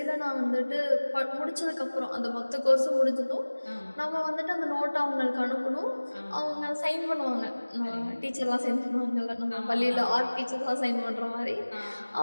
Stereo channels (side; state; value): both; inverted; correlation -1.00